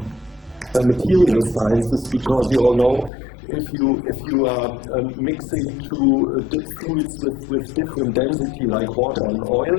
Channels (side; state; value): right; drops out; at 3.1 s